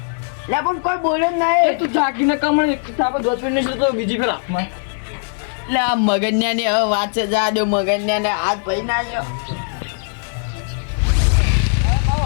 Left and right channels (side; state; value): right; silent; digital silence